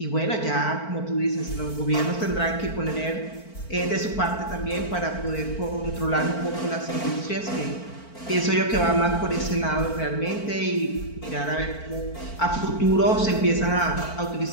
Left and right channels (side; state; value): right; late; 4.5 ms